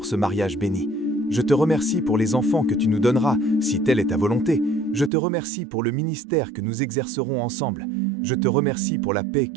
ce mariage béni. Je te remercie pour les enfants que tu nous donneras, si telle est ta volonté. Je te remercie pour le ministère que nous exercerons ensemble. Je te remercie pour la paix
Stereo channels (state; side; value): drops out; left; at 5.1 s